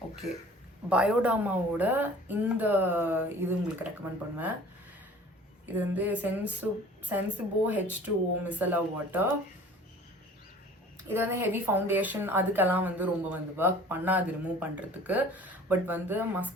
Okay, பயோடர்மாவோட இந்த இது உங்களுக்கு ரெக்கமெண்ட் பண்ணுவேன். இது வந்து சென்சிபோ H2O மிசலா வாட்டர். இது வந்து ஹெவி ஃபவுண்டேஷன் அதுக்கெல்லாம் வந்து ரொம்ப வந்து ஒர்க் பண்ணாது ரிமூவ் பண்ணுறதுக்கு. பட் வந்து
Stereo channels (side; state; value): both; normal; correlation 0.47